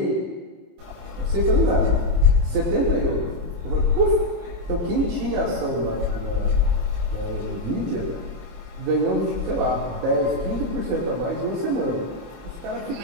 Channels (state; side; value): late; left; 23 ms